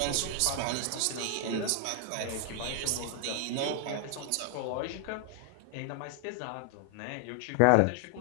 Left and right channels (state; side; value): different; both; correlation 0.00